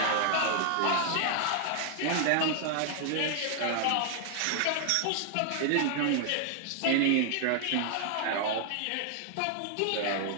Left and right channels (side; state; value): both; different; correlation 0.00